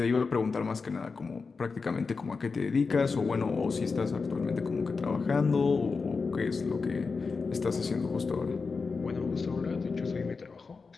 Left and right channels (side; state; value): right; quieter; 4.6 dB